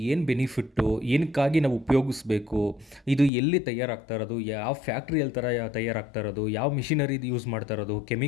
ಏನು ಬೆನಿಫಿಟ್ಟು, ಏನಕ್ಕಾಗಿ ನಾವು ಉಪಯೋಗಿಸ್ಬೇಕು, ಇದು ಎಲ್ಲಿ ತಯಾರಾಗ್ತಾ ಇರೋದು, ಯಾವ ಫ್ಯಾಕ್ಟ್ರಿಯಲ್ಲಿ ತಯಾರಾಗ್ತಾ ಇರೋದು, ಯಾವ ಮಿಷಿನರಿದು ಯೂಸ್ ಮಾಡ್ತಾ ಇರೋದು,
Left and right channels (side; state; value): right; drops out; at 3.3 s